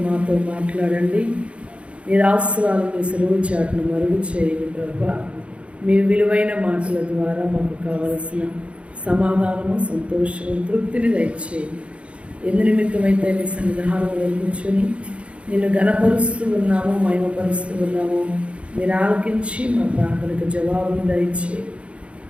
మాతో మాట్లాడండి. మీరు ఆశీర్వాదాలు మీ సెలవు చాటును మరుగు చేయండి ప్రభా. మీ విలువైన మాటల ద్వారా మాకు కావలసిన సమాధానము, సంతోషము, తృప్తిని దయచేయండి. ఎందు నిమిత్తమైతే నీ సన్నిధానంలో కూర్చొని నిన్ను ఘనపరుస్తూ ఉన్నాము, మహిమపరుస్తూ ఉన్నాము. మీరు ఆలకించి మా ప్రార్థనకు జవాబును దయచేయండి.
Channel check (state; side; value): late; left; 0.061 ms